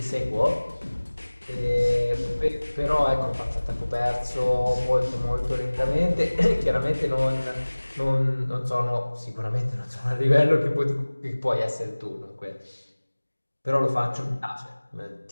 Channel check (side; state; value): both; inverted; correlation -1.00